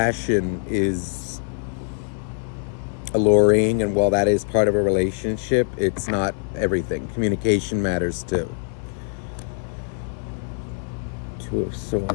is alluring and while that is part of a relationship, it's not everything. Communication matters too. Two of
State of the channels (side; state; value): right; silent; digital silence